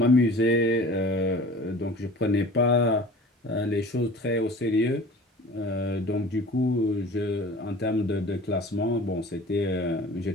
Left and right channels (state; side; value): normal; both; correlation 0.42